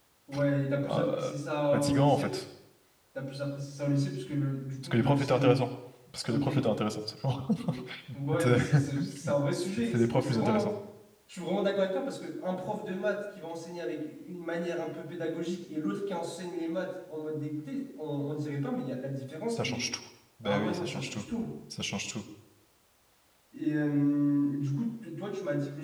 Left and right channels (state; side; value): identical; both; correlation 1.00